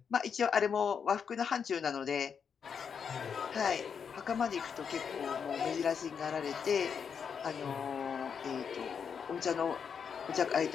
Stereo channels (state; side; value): quieter; right; 6.8 dB